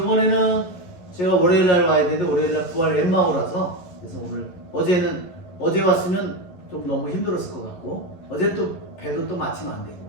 제가 월요일 날 와야 되는데 월요일 날 부활 엠마오라서 그래서 오늘 어제 왔으면 좀 너무 힘들었을 것 같고 어제 또 배도 또 마침 안 되고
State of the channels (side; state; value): right; late; 11 ms